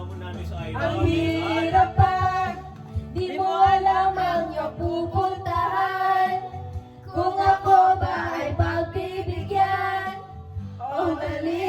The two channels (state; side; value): identical; both; correlation 1.00